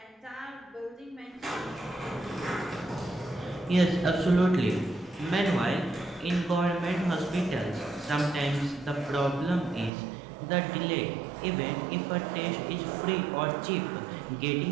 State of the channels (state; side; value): drops out; left; at 9.9 s